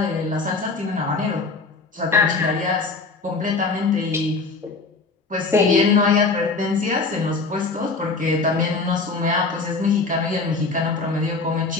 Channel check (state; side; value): quieter; right; 4.0 dB